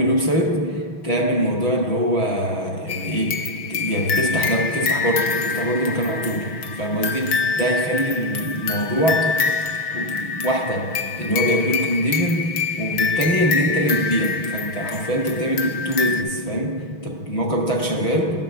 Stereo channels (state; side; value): late; right; 6.2 ms